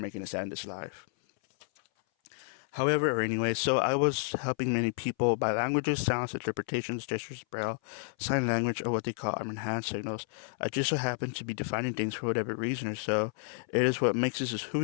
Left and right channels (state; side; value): silent; right; 57 dB below the other